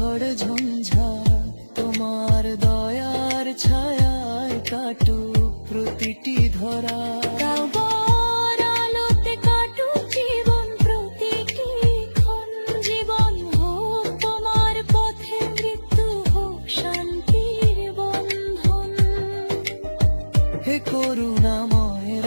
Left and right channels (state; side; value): inverted; both; correlation -1.00